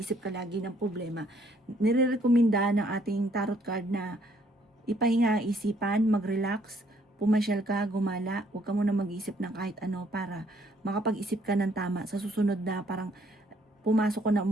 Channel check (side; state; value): both; normal; correlation 0.66